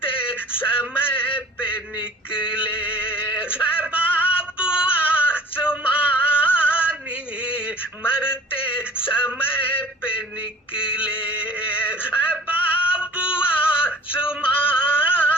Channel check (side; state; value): both; normal; correlation 0.48